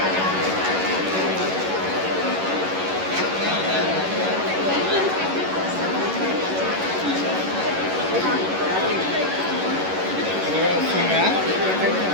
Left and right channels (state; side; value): late; left; 11 ms